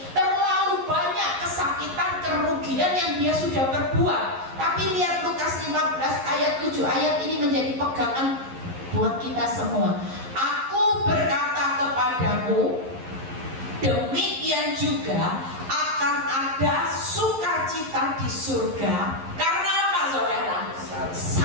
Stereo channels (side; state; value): left; late; 11 ms